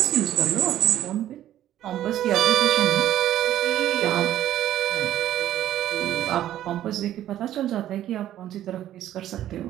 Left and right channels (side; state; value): left; quieter; 12.4 dB